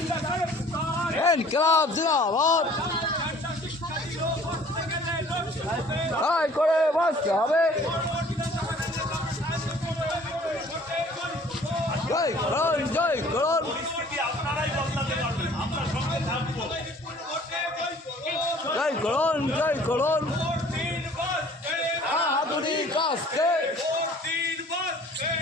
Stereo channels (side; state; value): both; normal; correlation 0.52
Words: ইনকিলাব জিন্দাবাদ। তাই করে বাঁচতে হবে। জয় করুন, জয় করুন। পরিস্থিতি আপনারাই বদলাতে পারবেন, আমরা সঙ্গে থাকবো। জয় করুন, জয় করুন। হাতুড়ি কাস্তে,